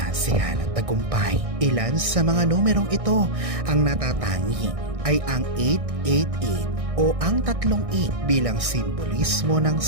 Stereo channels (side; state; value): left; late; 1.6 ms